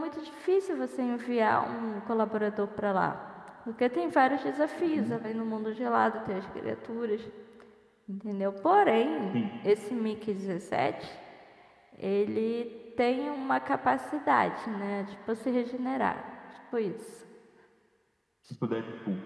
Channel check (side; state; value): both; identical; correlation 1.00